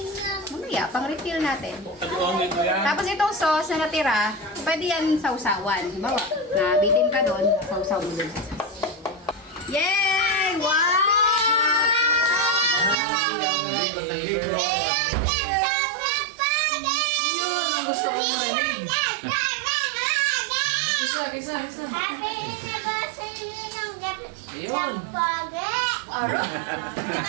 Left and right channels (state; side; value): drops out; left; at 13.0 s